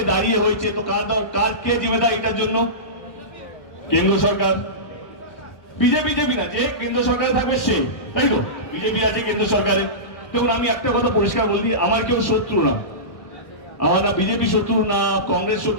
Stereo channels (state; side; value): late; right; 1.3 ms